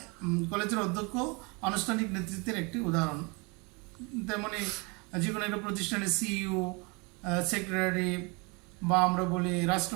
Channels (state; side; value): quieter; left; 29.4 dB